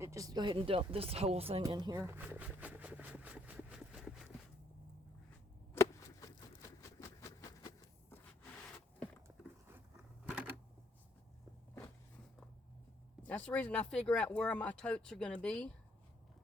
just go ahead and dump this whole thing in here. That's the reason I figure out where my totes are going to be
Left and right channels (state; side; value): normal; both; correlation 0.68